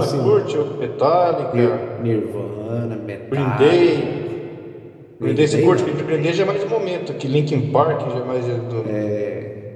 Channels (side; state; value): both; identical; correlation 1.00